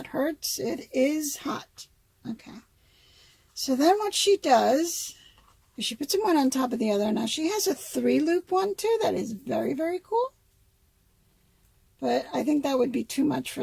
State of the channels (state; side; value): identical; both; correlation 1.00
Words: hurts, it is hot. Okay. So then what she does is she puts them one on top of the other. Now she has a 3-loop one too. That is very, very cool. But I think that would be too much